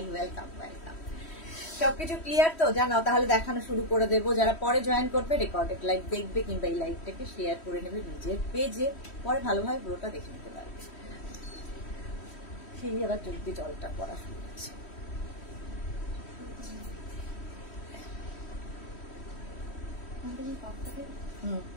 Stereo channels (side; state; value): right; late; 3.1 ms